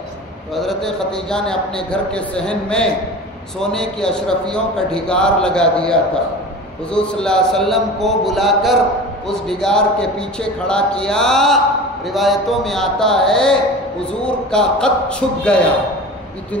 تو حضرت خدیجہ نے اپنے گھر کے صحن میں سونے کی اشرفیوں کا ڈھگار لگا دیا تھا. حضور صلی اللہ علیہ وسلم کو بلا کر اس ڈھگار کے پیچھے کھڑا کیا. روایتوں میں آتا ہے حضور کا قد چھپ گیا.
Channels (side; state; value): both; normal; correlation 0.35